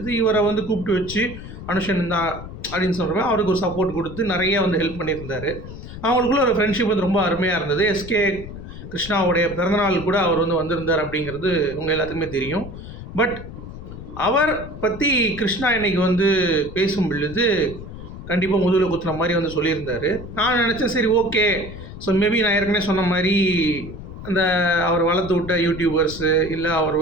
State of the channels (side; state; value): left; noise; rumble, 12 dB below the sound